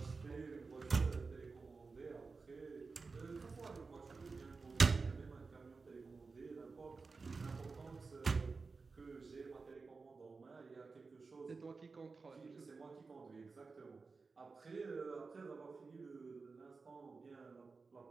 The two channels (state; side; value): quieter; left; 4.3 dB